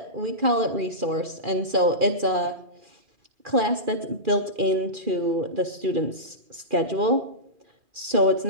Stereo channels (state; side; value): late; left; 2.4 ms